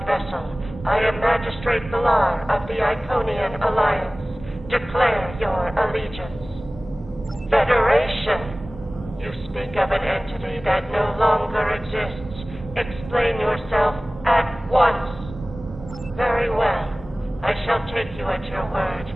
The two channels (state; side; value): normal; both; correlation 0.98